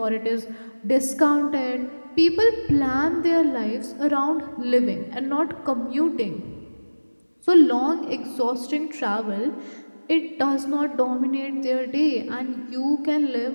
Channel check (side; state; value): both; inverted; correlation -1.00